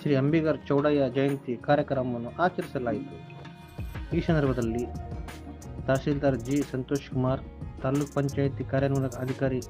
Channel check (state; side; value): identical; both; correlation 1.00